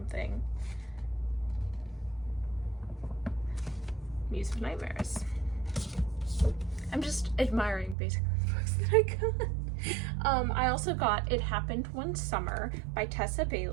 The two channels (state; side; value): drops out; left; at 8.0 s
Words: Muse of Nightmares. I'm just admiring basically the books that I got. I also got It Happened One Summer by Tessa